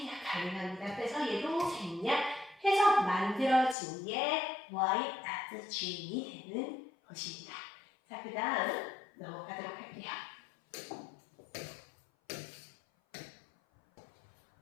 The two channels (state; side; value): drops out; right; at 3.8 s